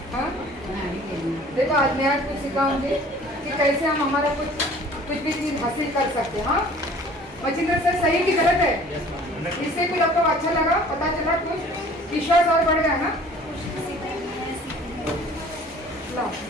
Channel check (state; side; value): normal; both; correlation 0.50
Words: हाँ देखो आज मैं आज कुछ सिखाऊंगी कि कैसे हम हमारा कुछ भी चीज हासिल कर सकते हैं। हाँ मचिंद्र सर सही की गलत है? इससे कुछ आपको अच्छा लगा, पता चला, कुछ विश्वास और बढ़ गया ना?